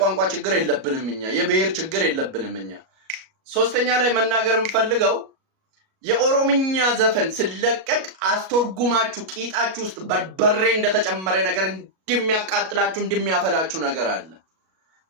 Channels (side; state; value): left; late; 37 ms